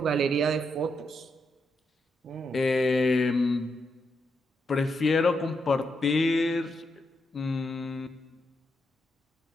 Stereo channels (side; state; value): both; normal; correlation 0.82